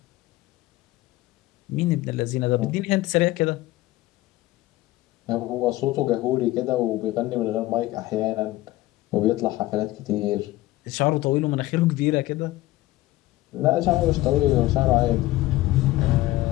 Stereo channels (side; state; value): right; quieter; 17.3 dB